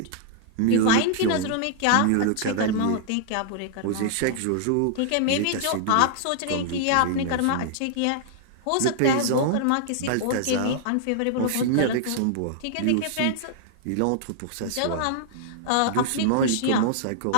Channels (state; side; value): different; both; correlation -0.01